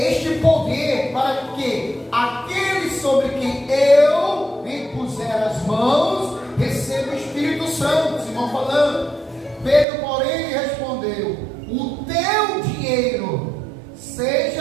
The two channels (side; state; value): left; drops out; at 9.9 s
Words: poder, para que aqueles sobre quem eu impuser as mãos recebam o Espírito Santo. Simão falando. Pedro, porém, lhe respondeu: o teu dinheiro